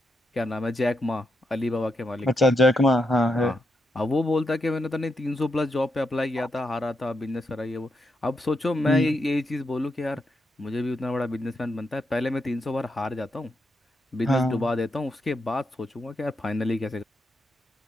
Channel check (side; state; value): both; normal; correlation 0.83